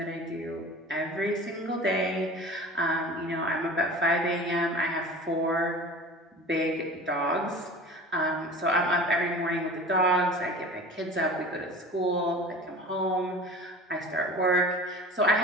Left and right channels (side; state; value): both; normal; correlation 0.38